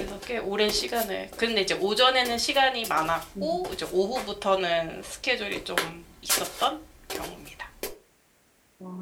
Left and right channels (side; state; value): both; identical; correlation 1.00